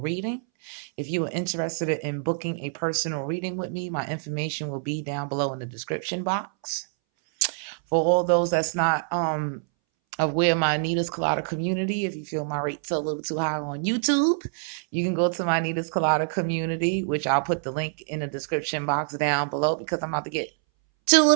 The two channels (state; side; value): silent; left; 61 dB below the other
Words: If you are interested in booking a personal reading with me, my information will be down below in the description box. For all those that's not aware of my Nitascoladas community, if you feel my rates are a little too high on YouTube, you can go to my Nitascoladas community, which I'll put the link in the description box down below because I'm about to get 2